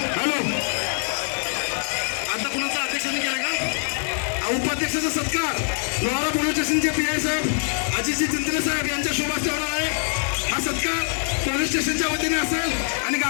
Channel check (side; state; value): right; silent; 63 dB below the other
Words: हॅलो आता कुणाचा अध्यक्षाने केला का? उपाध्यक्षाचा सत्कार लोहारा पोलीस स्टेशनचे PI साहेब अजितजी चिंतले साहेब यांच्या शुभ हस्ते होणार आहे। हा सत्कार पोलीस स्टेशनच्या वतीने असेल आणि